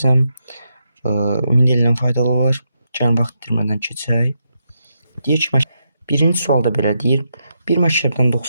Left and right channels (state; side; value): inverted; both; correlation -0.82